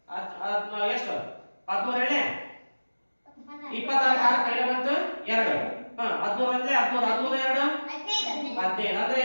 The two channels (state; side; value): inverted; both; correlation -1.00